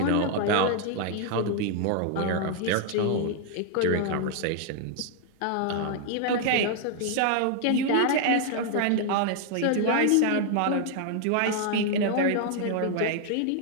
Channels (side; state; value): both; different; correlation 0.00